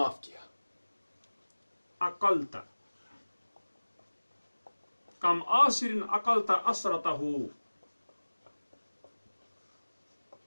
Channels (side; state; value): both; inverted; correlation -1.00